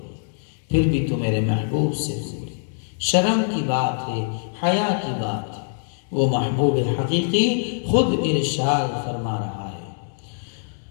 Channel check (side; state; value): right; silent; digital silence